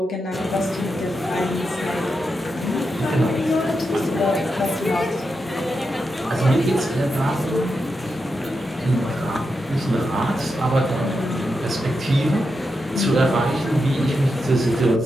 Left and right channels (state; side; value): normal; both; correlation 0.87